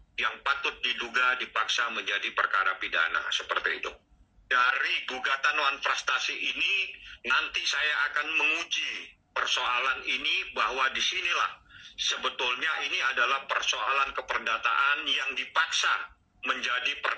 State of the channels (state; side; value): identical; both; correlation 1.00